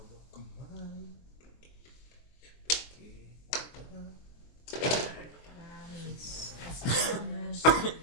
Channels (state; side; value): late; right; 23 ms